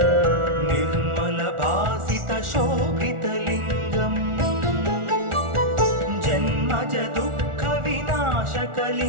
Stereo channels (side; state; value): left; late; 1.4 ms